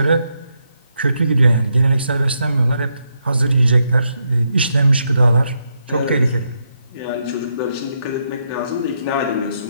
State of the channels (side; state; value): both; inverted; correlation -0.80